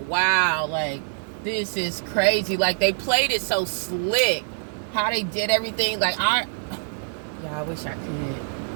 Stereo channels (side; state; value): left; silent; digital silence